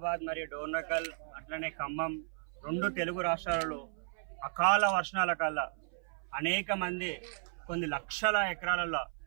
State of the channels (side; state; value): left; silent; 55 dB below the other